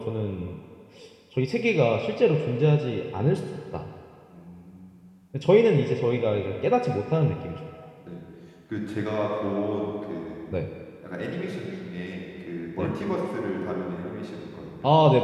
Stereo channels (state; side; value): identical; both; correlation 1.00